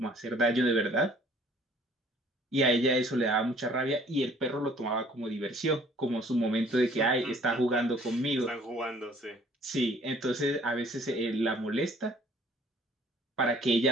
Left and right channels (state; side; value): normal; both; correlation 0.56